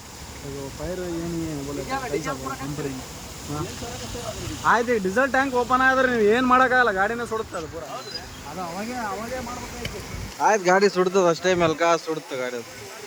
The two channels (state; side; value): identical; both; correlation 1.00